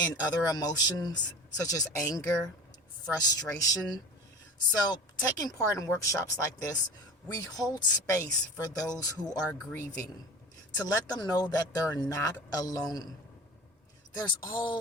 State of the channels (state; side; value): normal; both; correlation 0.35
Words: other emotions such as anger, frustration. So, taking part in workshops like this, we hold space for those who are grieving to let them know that they're not alone. There's